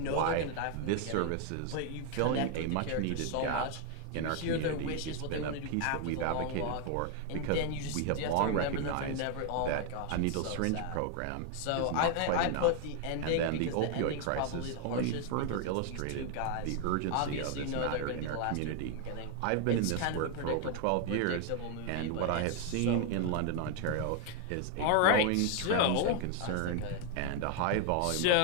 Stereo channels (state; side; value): different; both; correlation 0.00